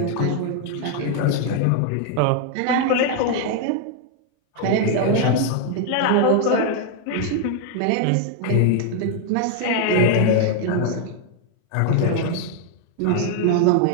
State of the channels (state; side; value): different; both; correlation 0.00